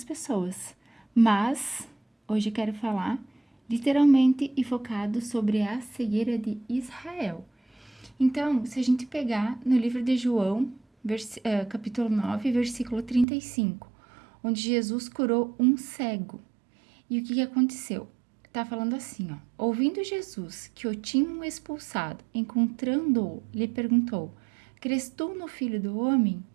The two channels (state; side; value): drops out; left; at 13.2 s